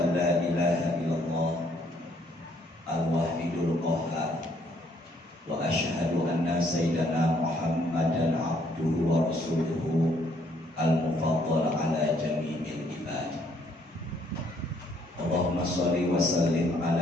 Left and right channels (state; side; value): normal; both; correlation 0.67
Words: la ilaha illallah al-wahidul qahhar wa asyhadu anna sayyidana Muhammadan abduhu wa rasuluhu al-mufaddal ala jami'il ibad. Allahumma sholli wa sallim